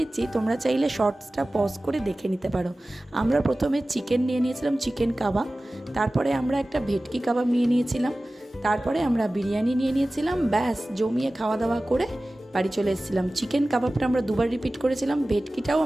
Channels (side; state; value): both; normal; correlation 0.97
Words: তোমরা চাইলে শর্টসটা পজ করে দেখে নিতে পারো। আমরা প্রথমে চিকেন নিয়ে নিয়েছিলাম, চিকেন কাবাব। তারপরে আমরা একটা ভেটকি কাবাব নিয়ে নিয়েছিলাম। তারপরে আমরা বিরিয়ানি নিয়ে নিয়েছিলাম। ব্যাস জমিয়ে খাওয়া দাওয়া করে বাড়ি চলে এসেছিলাম। চিকেন কাবাবটা আমরা 2বার রিপিট করেছিলাম, ভেটকিটাও